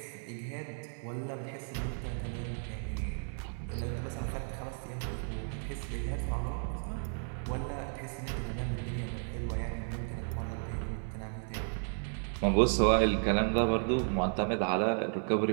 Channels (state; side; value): silent; left; 55 dB below the other